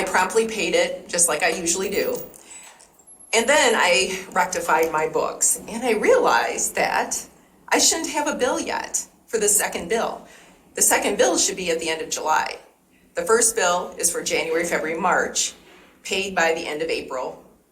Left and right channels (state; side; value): identical; both; correlation 1.00